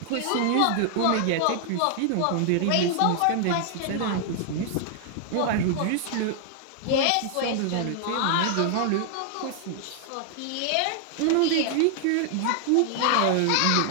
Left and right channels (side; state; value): both; different; correlation 0.00